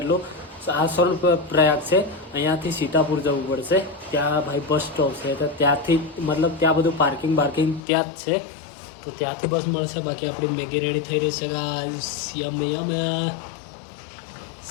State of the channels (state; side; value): drops out; right; at 7.8 s